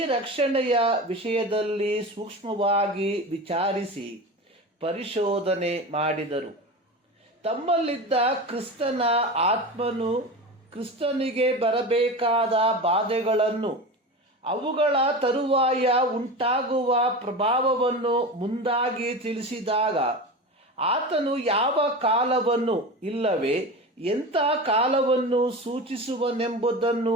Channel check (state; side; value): normal; both; correlation 0.27